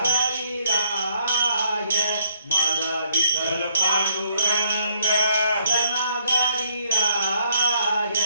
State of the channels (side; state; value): both; inverted; correlation -0.68